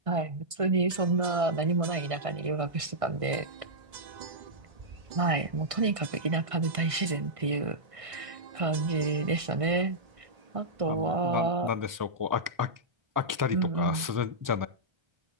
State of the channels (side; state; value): left; late; 1.5 ms